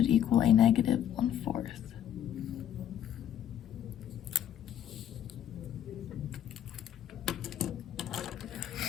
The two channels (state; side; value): quieter; right; 10.3 dB